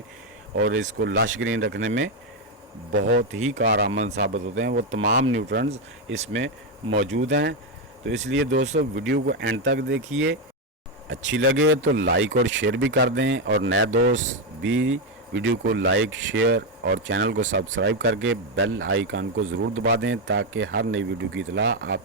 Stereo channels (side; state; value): both; normal; correlation 0.06